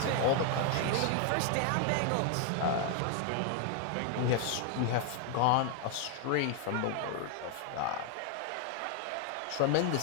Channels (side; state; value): both; different; correlation 0.00